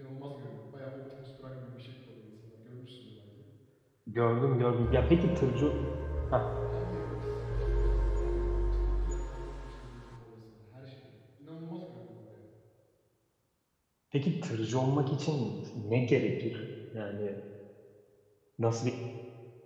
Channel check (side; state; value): both; identical; correlation 1.00